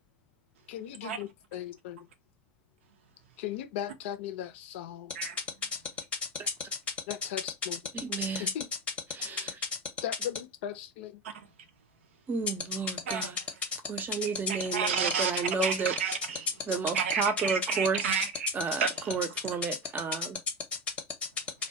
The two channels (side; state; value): both; normal; correlation 0.20